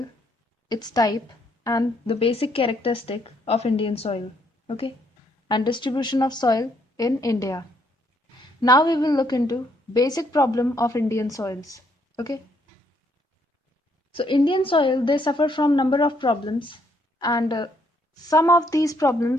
its type and the basic characteristic of Indian soil, okay? And distribution of soil in India. Now we will look into basic problem of Indian soils, okay? So Indian soil, they suffer from number of problems, and some of these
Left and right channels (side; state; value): both; normal; correlation 0.71